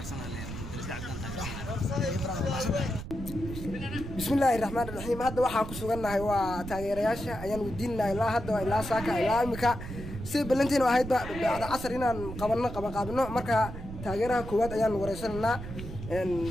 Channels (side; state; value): right; noise; rumble, 9 dB below the sound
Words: Dirisla Cabdi بسم الله الرحمن الرحيم هذا waxaan ku suganahay waa taageerayaasha ayaan wadiinahay ilaa hadda ilaa saaka ilaa imika si balantiin oo ahayd bacda casar inaan qabanno marka taageeraha koowaad ayaan wareysanaa